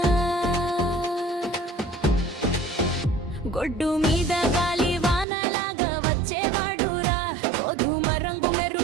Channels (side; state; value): left; drops out; at 5.2 s